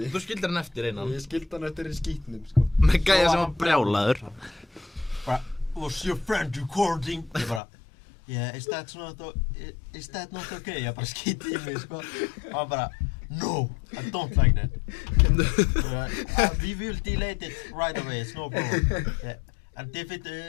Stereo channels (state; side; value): drops out; right; at 7.6 s